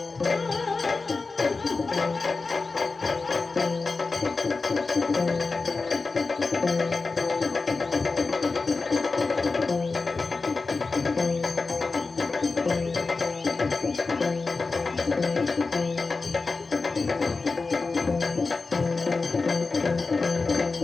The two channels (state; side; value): quieter; right; 4.0 dB